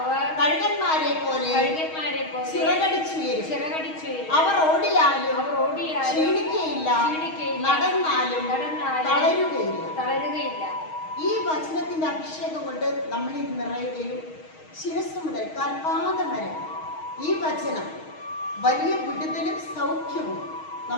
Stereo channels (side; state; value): right; late; 6.4 ms